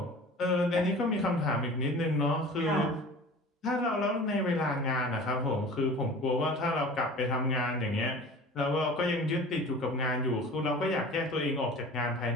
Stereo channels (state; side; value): normal; both; correlation 0.40